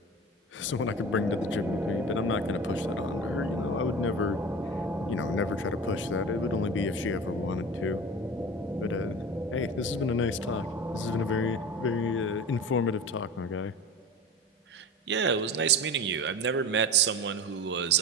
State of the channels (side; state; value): both; normal; correlation 0.33